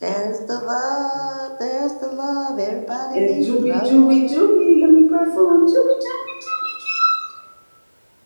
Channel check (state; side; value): inverted; both; correlation -1.00